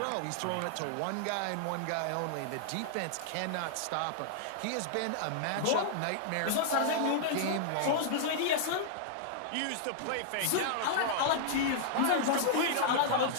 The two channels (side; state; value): both; different; correlation -0.01